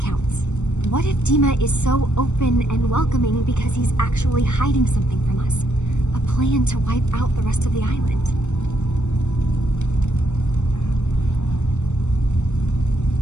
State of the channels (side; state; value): right; late; 0.83 ms